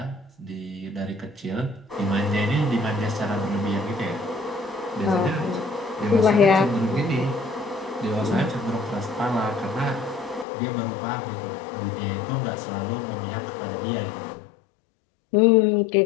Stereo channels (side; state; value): right; drops out; at 10.5 s